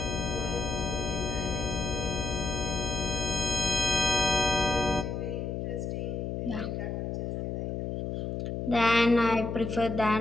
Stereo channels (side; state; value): left; noise; hum, 3 dB below the sound